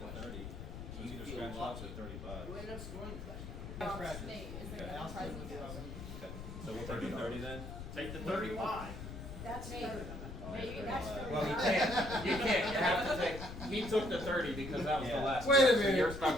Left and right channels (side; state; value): left; noise; rumble, 9 dB below the sound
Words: 30. You can either scratch off at 35. So we'll take the 30 then? Take the 35. That's 30. Well, you can't. You have to take. He took the 30 because that was the last. Wait a pick, so minute. you're stuck